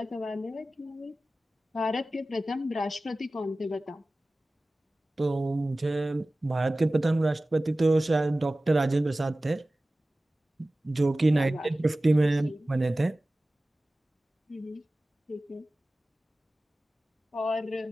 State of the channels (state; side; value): normal; both; correlation 0.97